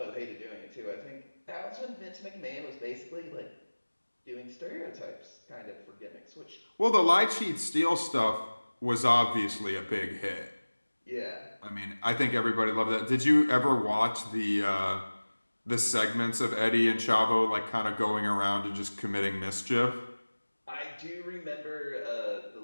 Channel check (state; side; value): inverted; both; correlation -1.00